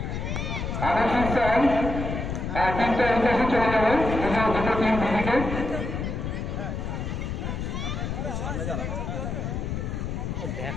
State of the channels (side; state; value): left; noise; rumble, 3 dB below the sound